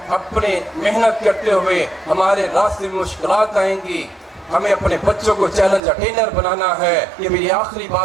اپنے محنت کرتے ہوئے ہمارے راستے میں مشکلات آئیں گی. ہمیں اپنے بچوں کو چیلنج اٹینر بنانا ہے. یہ میری آخری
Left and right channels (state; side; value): drops out; left; at 5.8 s